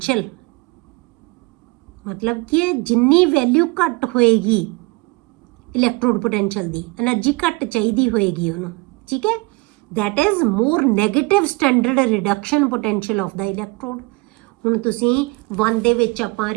ਮਤਲਬ ਕਿ ਜਿੰਨੀ ਵੈਲਿਊ ਘੱਟ ਹੋਏਗੀ ਇਲੈਕਟ੍ਰੋਡ ਪੋਟੈਂਸ਼ੀਅਲ ਦੀ, એનર્ਜੀ ਘੱਟ ਚਾਹੀਦੀ ਹੋਏਗੀ ਉਹਨੂੰ, ਠੀਕ ਹੈ, that is more negative standard reduction potential of the electrode। ਹੁਣ ਤੁਸੀਂ 1 ਦੇ ਵਿੱਚ ਆਪਾਂ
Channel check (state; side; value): quieter; left; 26.3 dB